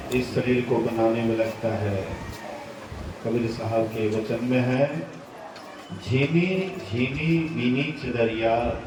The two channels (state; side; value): identical; both; correlation 1.00